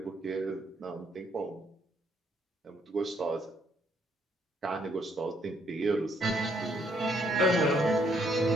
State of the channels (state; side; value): normal; both; correlation 0.70